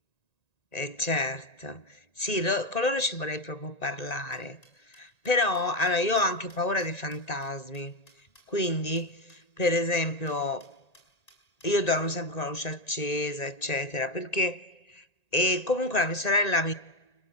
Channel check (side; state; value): right; late; 1.9 ms